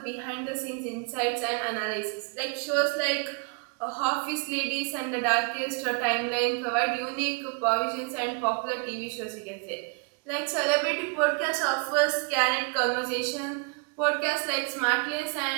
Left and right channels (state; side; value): quieter; left; 33.6 dB